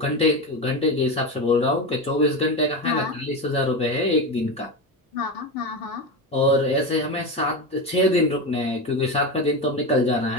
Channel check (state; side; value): normal; both; correlation 0.18